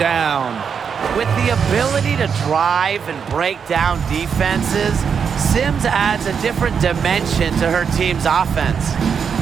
With the ability to drive and break down defenses, Sims adds a different dimension to her team's offense.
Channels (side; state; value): left; quieter; 6.7 dB